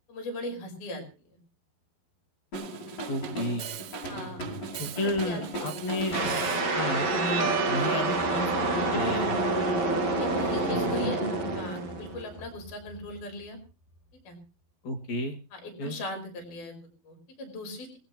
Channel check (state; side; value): late; right; 11 ms